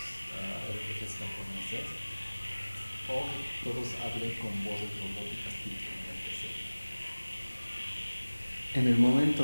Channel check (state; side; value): inverted; both; correlation -1.00